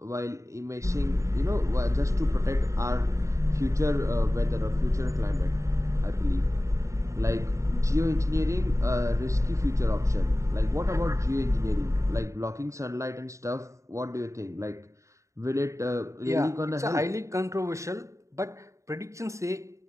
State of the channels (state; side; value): late; left; 0.15 ms